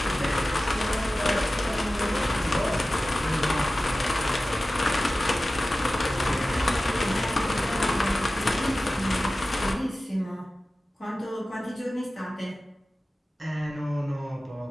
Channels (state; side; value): normal; both; correlation 0.96